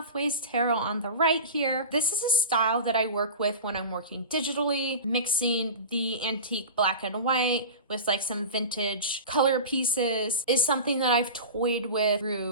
Tarot on the right here. This is a style that I work with when I'm working digitally, mixing the antique black and white with like some vintage color pieces is something that I've toyed with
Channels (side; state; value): both; inverted; correlation -0.31